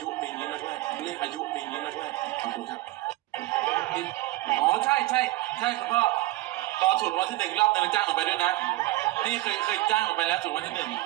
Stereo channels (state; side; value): quieter; left; 18.6 dB